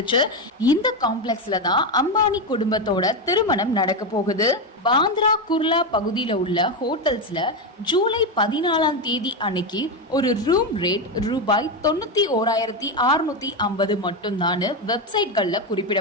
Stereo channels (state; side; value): normal; both; correlation 0.11